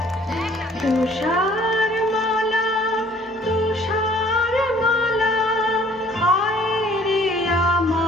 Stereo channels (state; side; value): normal; both; correlation 0.56